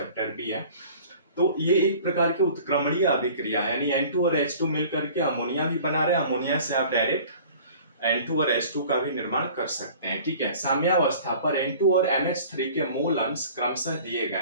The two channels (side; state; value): both; inverted; correlation -0.47